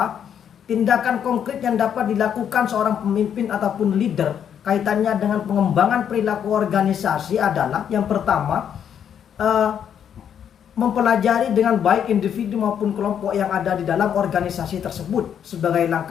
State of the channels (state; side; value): quieter; right; 8.7 dB